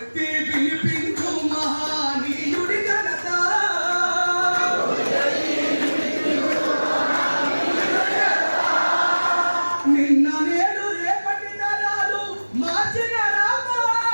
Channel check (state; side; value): inverted; both; correlation -1.00